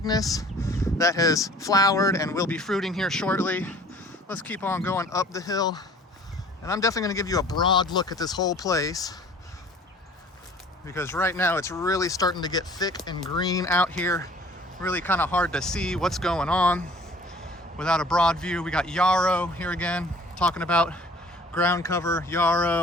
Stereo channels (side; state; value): both; normal; correlation 0.50